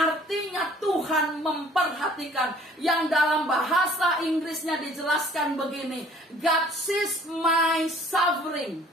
Tuhan memperhatikan. Yang dalam bahasa Inggrisnya dijelaskan begini, God sees my suffering.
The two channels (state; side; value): normal; both; correlation 0.54